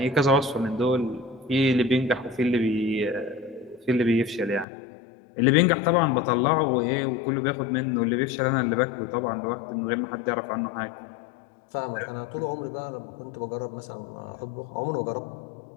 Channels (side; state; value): right; drops out; at 4.7 s